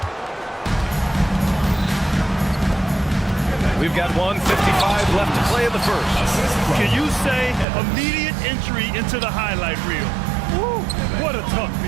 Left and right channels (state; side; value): drops out; left; at 7.7 s